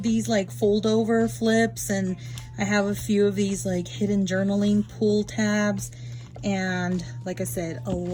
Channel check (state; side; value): identical; both; correlation 1.00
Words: these like fold over flips, and I have a few of these like hidden journaling pull tabs, and like I said, a